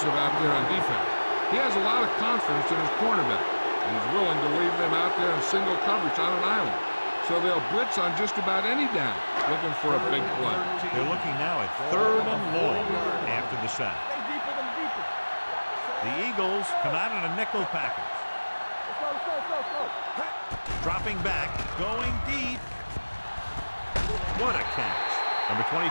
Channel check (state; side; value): inverted; both; correlation -1.00